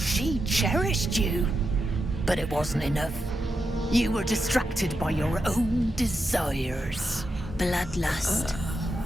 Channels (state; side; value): normal; both; correlation 0.86